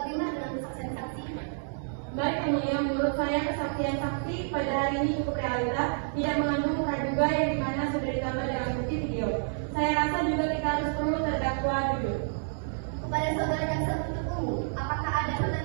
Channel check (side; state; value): left; silent; digital silence